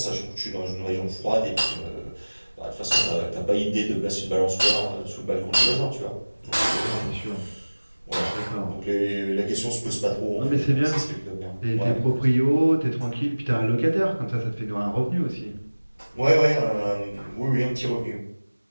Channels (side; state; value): both; inverted; correlation -1.00